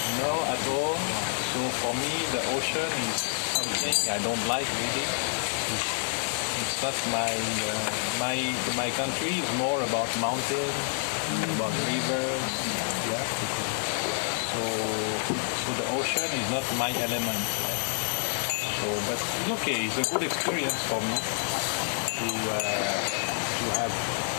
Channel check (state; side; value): silent; right; 59 dB below the other